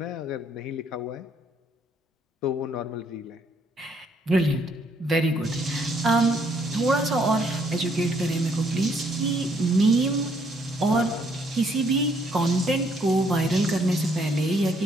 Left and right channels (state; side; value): normal; both; correlation 0.69